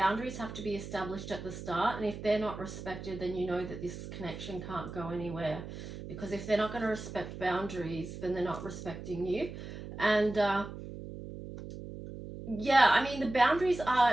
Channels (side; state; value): right; noise; hum, 10 dB below the sound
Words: have to be established at the start. And if they're not respected, then you know that this connection can't go anywhere. Because if they're not going to respect boundaries, then they're not respecting you. And yeah, I mean, the boundaries